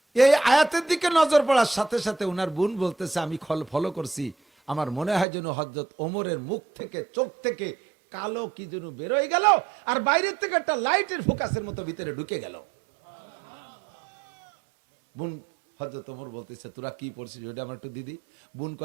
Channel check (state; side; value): drops out; left; at 5.2 s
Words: এই আয়াতের দিকে নজর পড়ার সাথে সাথে উনার বোন বলতেছে আমি ফলো করছি, আমার মনে হয় যেন হযরত ওমরের মুখ থেকে, চোখ থেকে কালো কি যেন বেরোয় গেল, আর বাইরের থেকে একটা লাইটের ফোকাসের মতো ভিতরে ঢুকে গেল। বোন হযরত ওমর বলতেছে তোরা কি পড়ছিস ওটা আমার একটু দিদি। বোন